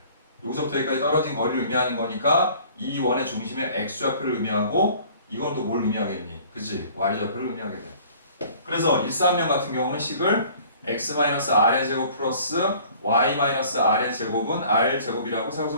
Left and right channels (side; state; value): both; inverted; correlation -0.51